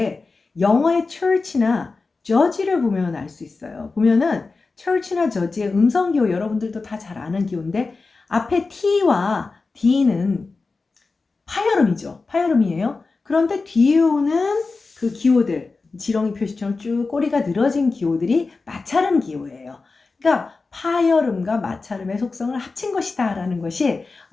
영어의 church나 judge를 보면 알 수 있어요. 보면은 church나 judge의 음성 기호 여러분들도 다 잘 아는 기호인데 앞에 t와 d는 파열음이죠. 파열음이에요. 그런데 뒤에 오는 그 기호들 지렁이 표시처럼 쭉 꼬리가 늘어진 기호들이 마찰음 기호예요. 그러니까 파열음과 마찰음의 속성을 합친 것이다 라는 것이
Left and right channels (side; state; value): right; quieter; 4.0 dB